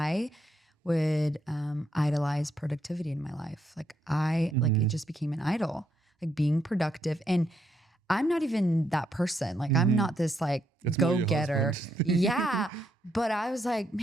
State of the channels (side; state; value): both; normal; correlation 0.77